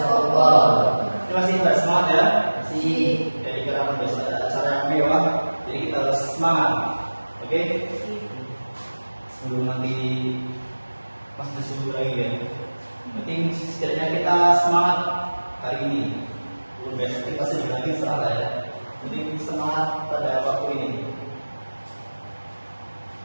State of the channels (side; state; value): both; inverted; correlation -1.00